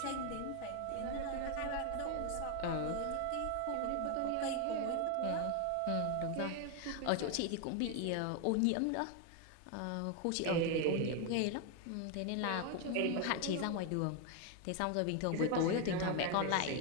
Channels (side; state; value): both; different; correlation 0.01